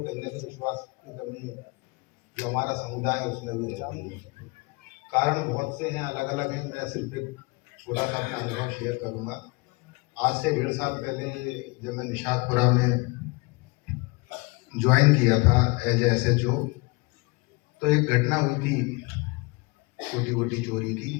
कहीं ना कहीं विश्वास की कमी जो हमारा समुदाय है उसमें भी रहती है। कारण बहुत से हैं, अलग अलग हैं। मैं सिर्फ एक छोटा सा अपना अनुभव शेयर करूंगा। आज से 1.5 साल पहले जब मैं निशातपुरा में ज्वाइन किया था एज SHO, तो एक घटना हुई थी, छोटी मोटी चोरी की।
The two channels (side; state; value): right; quieter; 26.9 dB